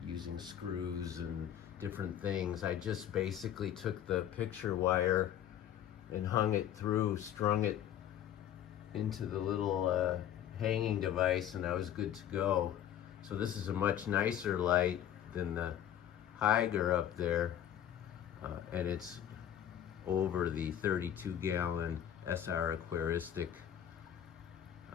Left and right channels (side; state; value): right; quieter; 10.5 dB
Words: using screws and different things. I just basically took the picture wire and hung it through, strung it into the little hanging device, and I was good to go. So this is a much nicer light than the Higer up there, and it's over the 32-gallon SR Aquaristic